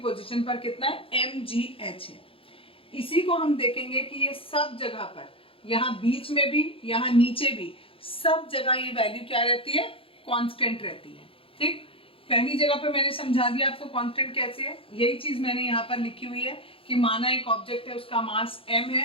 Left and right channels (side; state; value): right; late; 0.27 ms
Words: पर कितना है, mgh है। इसी को हम देखेंगे कि ये सब जगह पर, यहाँ बीच में भी, यहाँ नीचे भी, सब जगह ये वैल्यू क्या रहती है, कांस्टेंट रहती है। ठीक, पहली जगह पे मैंने समझा दिया आपको कांस्टेंट कैसे है। यही चीज मैंने यहाँ पर लिखी हुई है कि माना एक ऑब्जेक्ट है, उसका मास m